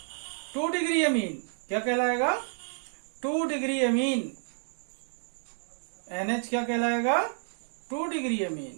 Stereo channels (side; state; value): left; silent; digital silence